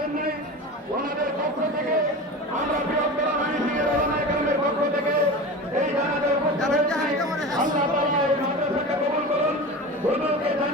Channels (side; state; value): both; normal; correlation 0.30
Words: ওনাদের পক্ষ থেকে আমরা বৃহত্তর ময়মনসিংহের উলামায়ে কেরামের পক্ষ থেকে এই জানাজায় উপস্থিত হয়েছি। আল্লাহ তাআলা এই মাদ্রাসাকে কবুল করুন, হুজুরকে